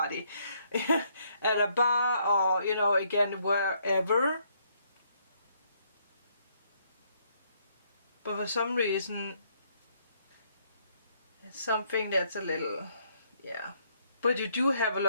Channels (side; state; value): both; inverted; correlation -0.70